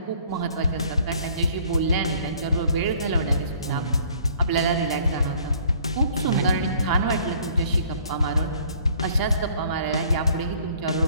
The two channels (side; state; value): both; inverted; correlation -0.57